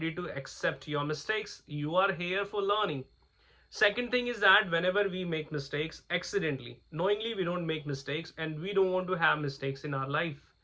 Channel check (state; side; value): identical; both; correlation 1.00